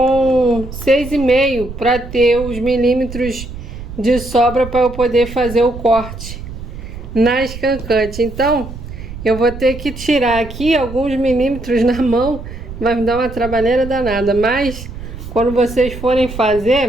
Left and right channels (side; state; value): right; noise; rumble, 11 dB below the sound